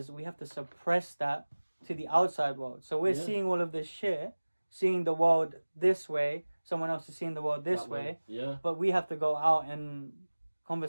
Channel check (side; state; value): both; inverted; correlation -1.00